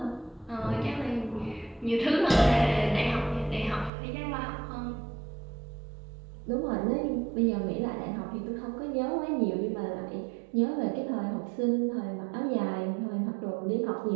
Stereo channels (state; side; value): drops out; left; at 3.9 s